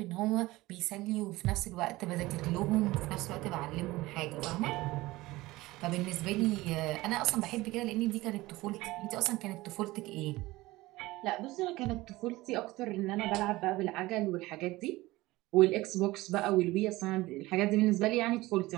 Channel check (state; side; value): quieter; left; 19.3 dB